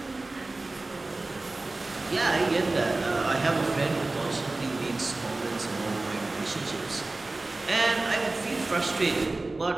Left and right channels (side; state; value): left; quieter; 3.1 dB